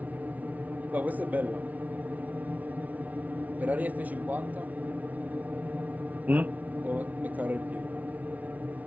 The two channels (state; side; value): late; left; 0.072 ms